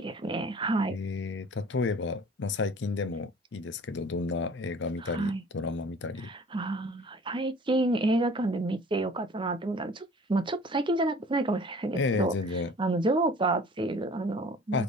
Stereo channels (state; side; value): normal; both; correlation 0.47